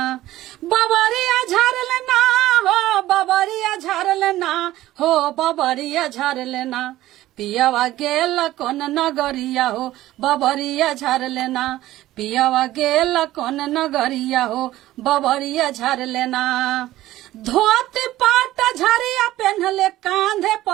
बबरिया झर लेना हो बबरिया झर लेना हो बबरिया झर लेना पियावा गेला कोन नगरिया हो बबरिया झर लेना पियावा गेला कोन नगरिया हो बबरिया झर लेना। धोती पाट झरिया पहनले कांधे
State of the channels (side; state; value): left; quieter; 15.3 dB